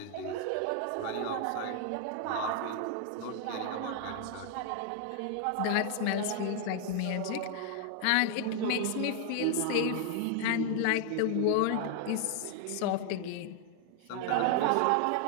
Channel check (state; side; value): different; both; correlation 0.00